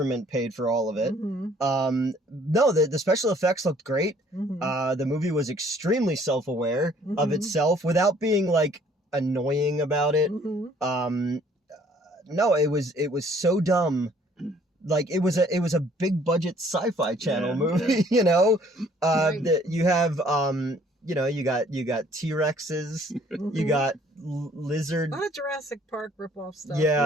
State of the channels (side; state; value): both; normal; correlation 0.59